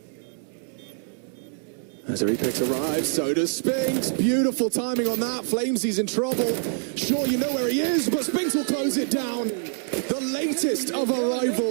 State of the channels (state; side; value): silent; left; digital silence